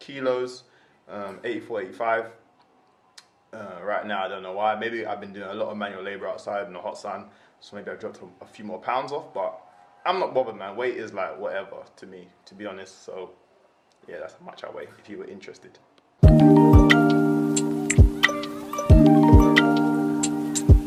84, 85. Right now, I don't know why. Maybe I've been doing a lot of manual labor outside in the hot sun, so maybe I've dropped a few more pounds off, but I'm not bothered, man. Weight is whatever to me, to be honest. So yeah, that's how much I weigh, if you were interested.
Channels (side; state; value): both; identical; correlation 1.00